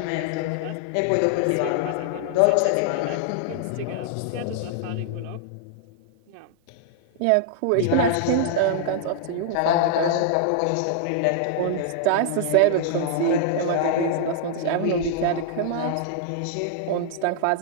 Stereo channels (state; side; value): different; both; correlation -0.01